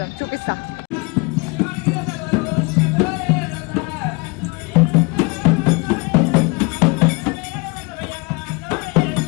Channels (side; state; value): right; quieter; 28.0 dB